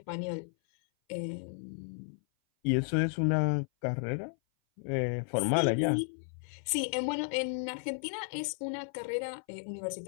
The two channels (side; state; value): right; silent; 55 dB below the other